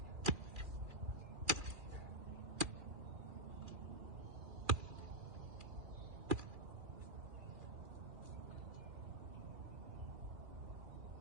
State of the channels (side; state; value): left; late; 2.4 ms